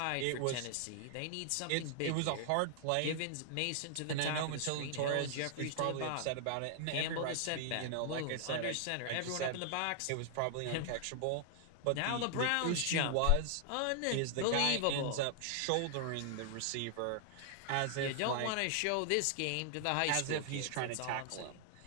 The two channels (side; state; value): both; different; correlation 0.00